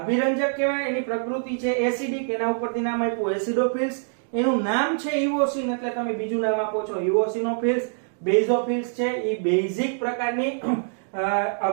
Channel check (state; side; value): silent; left; digital silence